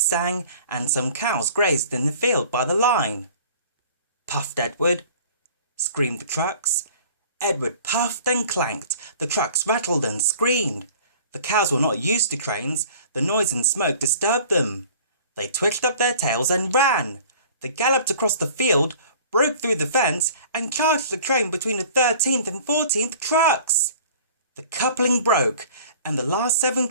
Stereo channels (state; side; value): inverted; both; correlation -0.48